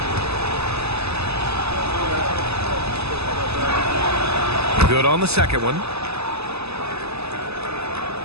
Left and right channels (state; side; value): late; left; 0.79 ms